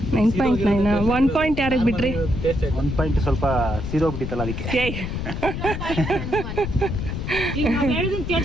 9.9. 1 ಪಾಯಿಂಟ್ ಯಾರಿಗೆ ಬಿಟ್ರಿ? 1 ಪಾಯಿಂಟ್ ಸ್ವಲ್ಪ ಸೀದೋಗ್ಬಿಟ್ಟಿತ್ತಲ್ಲ ಅದಕ್ಕೆ. ಹೇಳಿದೀನಿ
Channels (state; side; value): noise; left; rumble, 5 dB below the sound